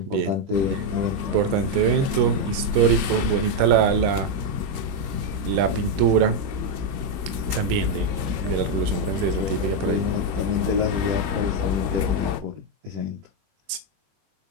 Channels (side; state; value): left; late; 21 ms